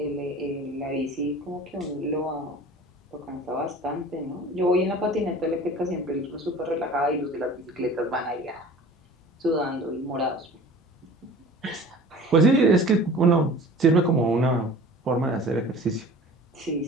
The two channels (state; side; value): normal; both; correlation 0.43